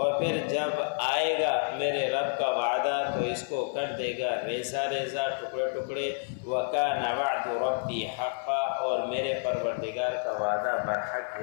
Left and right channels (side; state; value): right; silent; 58 dB below the other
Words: پھر جب آئے گا میرے رب کا وعدہ تو اس کو کر دے گا ریزہ ریزہ، ٹکڑے ٹکڑے۔ وَكَانَ وَعْدُ رَبِّي حَقًّا، اور میرے پروردگار کا وعدہ برحق